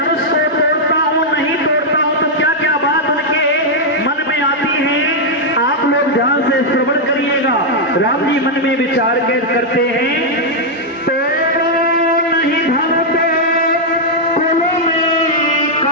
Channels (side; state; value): both; normal; correlation -0.03